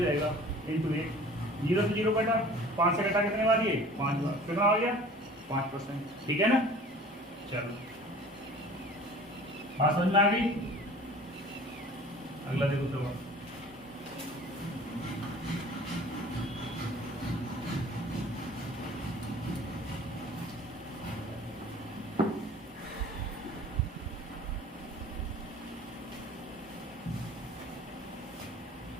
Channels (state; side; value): normal; both; correlation 0.46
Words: रहेगा × 1। 0 से 0 कटा, 5 से कटा कितने बार? ये 5 बार। कितना हो गया? 5%। ठीक है ना? चलो बात समझ में आ गई? अगला देखो सवाल।